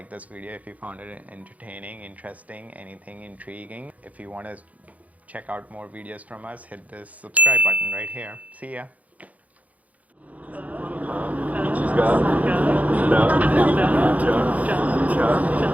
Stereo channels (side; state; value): left; late; 0.071 ms